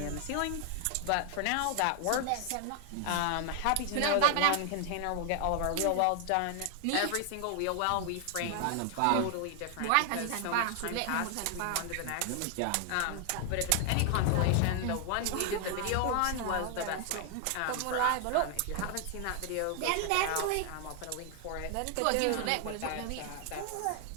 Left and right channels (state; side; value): different; both; correlation 0.00